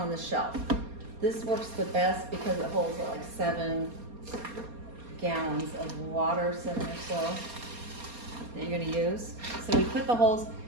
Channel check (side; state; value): left; late; 4.3 ms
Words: the shelf. This works the best because it holds like 7 gallons of water, 7 or so, that you're gonna use. So we put the holes,